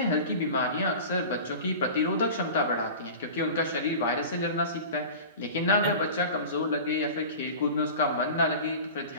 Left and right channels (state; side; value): inverted; both; correlation -0.35